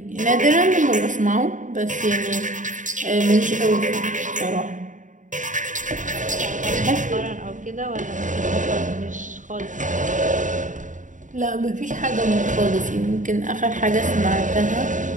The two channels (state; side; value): late; left; 0.37 ms